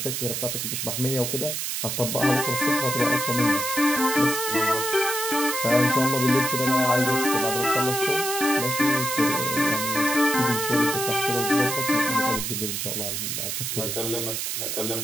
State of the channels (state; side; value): noise; right; hiss, 2 dB below the sound